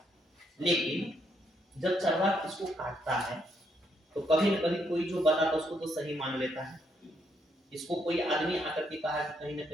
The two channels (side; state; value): both; normal; correlation 0.75